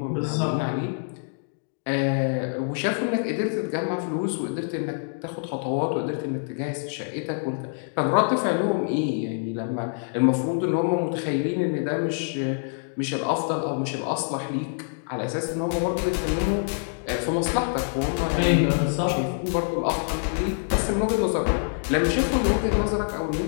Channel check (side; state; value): right; silent; digital silence